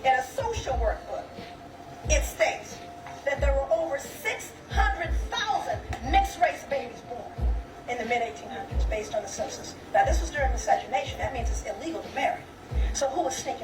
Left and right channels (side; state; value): both; identical; correlation 1.00